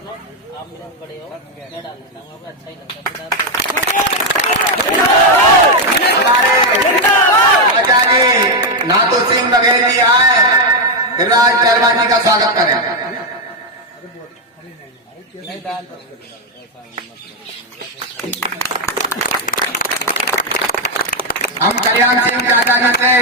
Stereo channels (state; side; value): normal; both; correlation 0.03